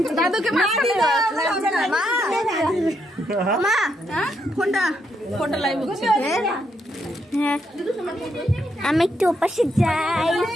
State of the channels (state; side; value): normal; both; correlation 0.78